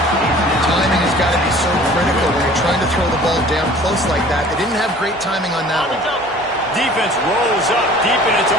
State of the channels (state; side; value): normal; both; correlation 0.48